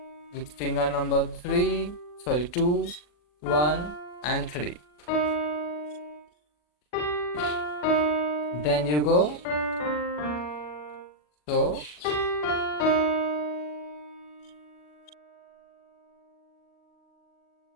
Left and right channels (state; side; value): late; right; 40 ms